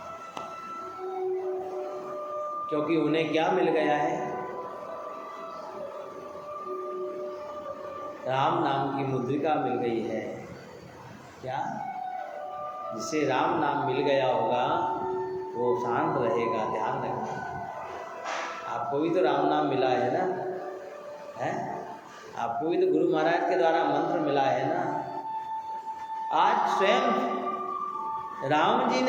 क्योंकि उन्हें क्या मिल गया है? राम नाम की मुद्रिका मिल गई है। क्या? जिसे राम नाम मिल गया होगा वो शांत रहेगा। ध्यान रखना। आपको भी तो राम नाम मिला है ना, है? आपको भी तो गुरु महाराज के द्वारा मंत्र मिला है ना। आज स्वयं राम जी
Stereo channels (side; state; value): both; identical; correlation 1.00